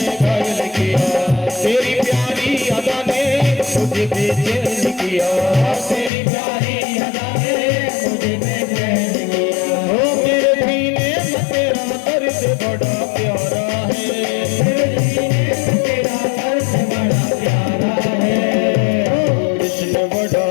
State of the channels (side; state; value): right; drops out; at 6.1 s